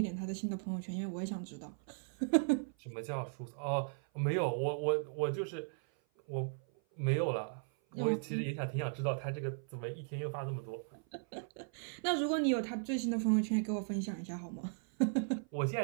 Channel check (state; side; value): silent; left; 53 dB below the other